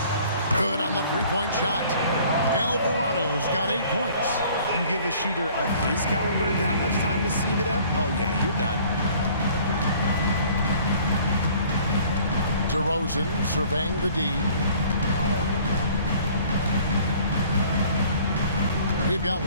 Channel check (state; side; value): inverted; both; correlation -0.54